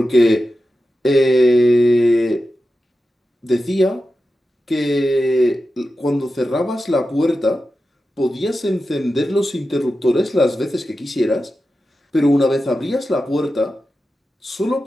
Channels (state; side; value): normal; both; correlation 0.92